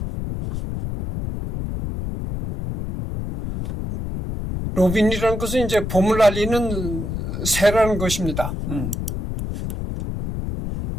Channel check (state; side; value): noise; left; rumble, 5 dB below the sound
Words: 로빈이라는 것은 이제 봄을 알리는 새라는 것입니다.